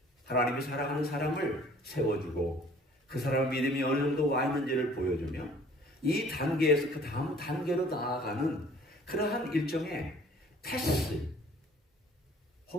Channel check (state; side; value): normal; both; correlation 0.53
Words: 하나님이 사랑하는 사람을 세워주고 그 사람의 믿음이 어느 정도 와 있는지를 보여주며 이 단계에서 그 다음 단계로 나아가는 그러한 일종의 테스트